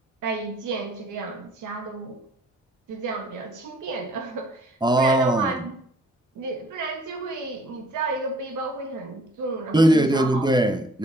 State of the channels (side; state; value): both; normal; correlation 0.58